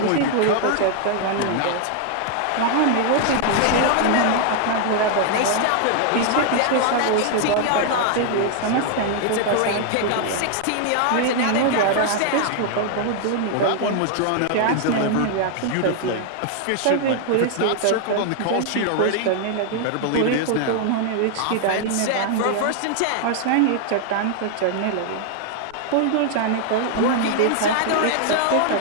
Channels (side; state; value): both; different; correlation 0.00